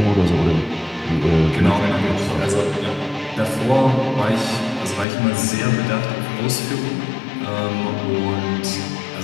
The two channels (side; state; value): right; drops out; at 5.1 s